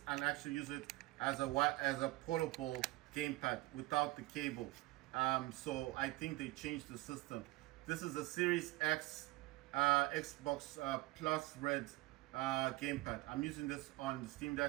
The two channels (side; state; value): left; quieter; 20.0 dB